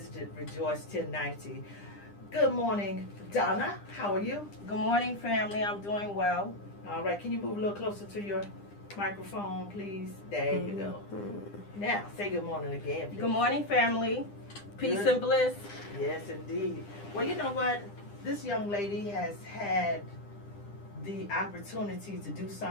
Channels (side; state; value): right; late; 9.9 ms